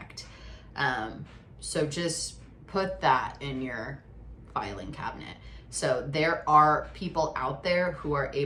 So just put that in your filing cabinet. So there are people out there who are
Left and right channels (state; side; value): identical; both; correlation 1.00